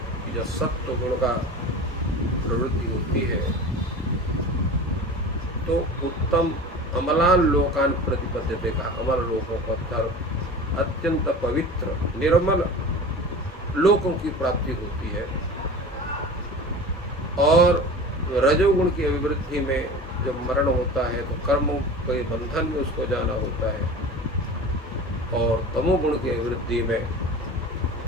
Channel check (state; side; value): normal; both; correlation 0.35